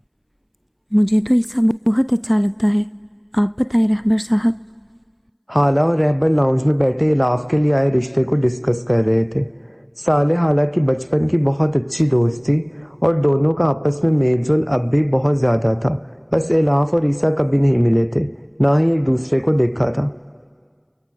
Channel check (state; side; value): identical; both; correlation 1.00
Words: مجھے تو عیسیٰ بہت اچھا لگتا ہے، آپ بتائیں رہبر صاحب۔ حالہ اور رہبر لاؤنج میں بیٹھے الاف کے لیے آئے رشتے کو ڈسکس کر رہے تھے۔ صالح حالہ کی بچپن کی بہت اچھی دوست تھی اور دونوں کا آپس میں میل جول اب بھی بہت زیادہ تھا، بس الاف اور عیسیٰ کبھی نہیں ملے تھے، نہ ہی ایک دوسرے کو دیکھا تھا۔